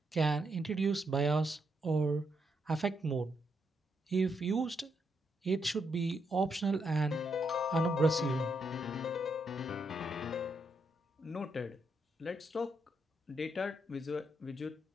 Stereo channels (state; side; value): normal; both; correlation 0.79